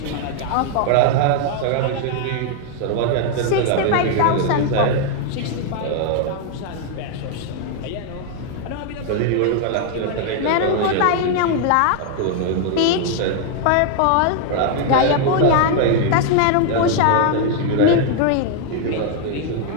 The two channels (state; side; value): different; both; correlation 0.00